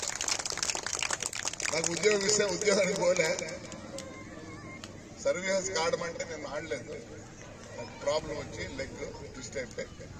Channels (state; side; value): identical; both; correlation 1.00